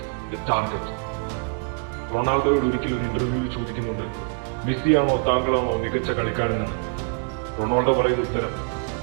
the target. റൊണാൾഡോയോട് ഒരിക്കലും ഒരു ഇന്റർവ്യൂവിൽ ചോദിക്കുന്നുണ്ട്, മെസ്സിയാണോ താങ്കളാണോ മികച്ച കളിക്കാരനെന്ന്. റൊണാൾഡോ പറയുന്ന ഉത്തരം,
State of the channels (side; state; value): left; quieter; 36.9 dB